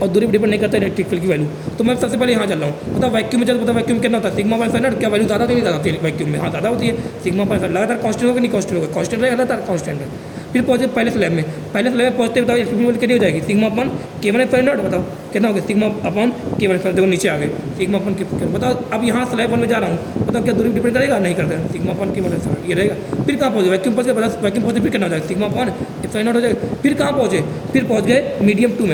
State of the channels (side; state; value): both; identical; correlation 1.00